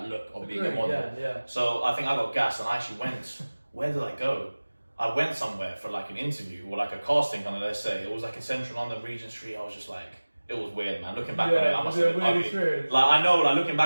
look of being a model. So I think I got gassed and I actually went, where did I go? I went somewhere for like an interview or like a casting kind of, let's say, it was like in Central London, Regent Street. I was just like, it was weird, man. Looking back on it, I must have been ugly. Experience. Like I know, like looking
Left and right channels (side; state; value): both; inverted; correlation -1.00